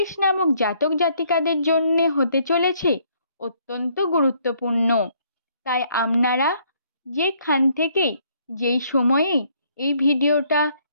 নামক জাতক জাতিকাদের জন্য হতে চলেছে অত্যন্ত গুরুত্বপূর্ণ। তাই আপনারা যেখান থেকেই যেই সময়েই এই ভিডিওটা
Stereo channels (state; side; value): inverted; both; correlation -0.67